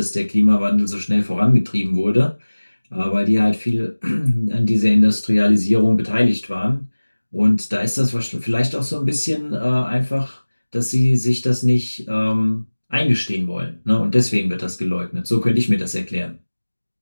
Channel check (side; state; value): both; inverted; correlation -1.00